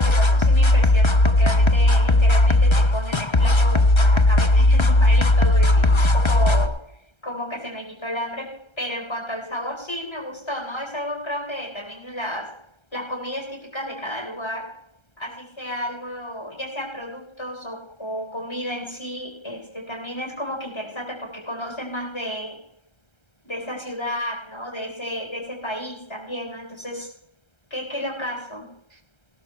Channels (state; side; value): late; right; 1.3 ms